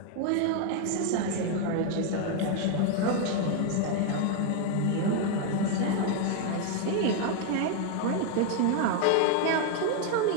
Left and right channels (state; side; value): different; both; correlation 0.01